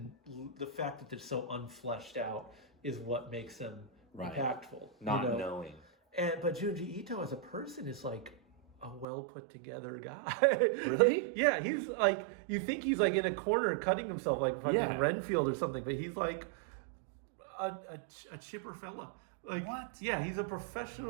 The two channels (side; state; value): left; drops out; at 9.1 s